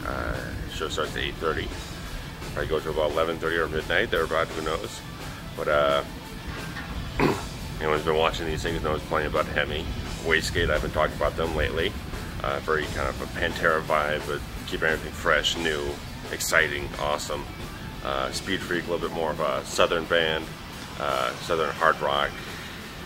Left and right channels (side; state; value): both; identical; correlation 1.00